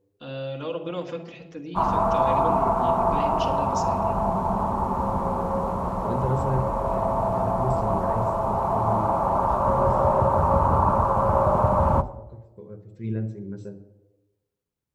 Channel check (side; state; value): both; identical; correlation 1.00